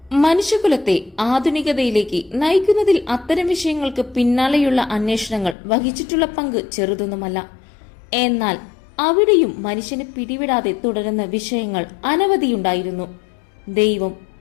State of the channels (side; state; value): right; drops out; at 5.6 s